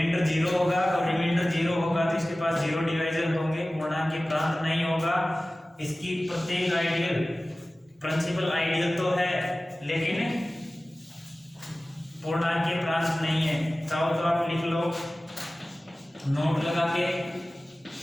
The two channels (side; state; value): both; normal; correlation 0.97